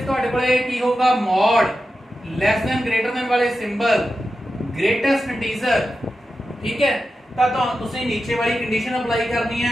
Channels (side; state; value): both; normal; correlation 0.91